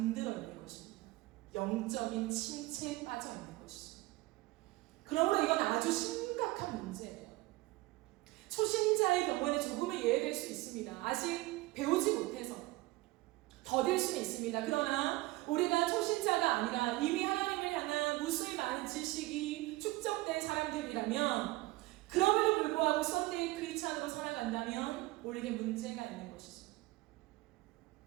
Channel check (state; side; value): quieter; left; 20.0 dB